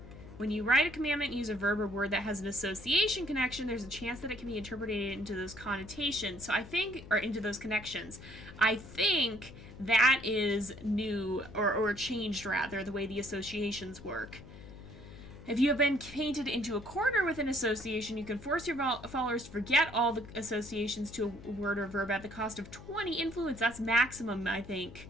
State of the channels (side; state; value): left; noise; hum, 16 dB below the sound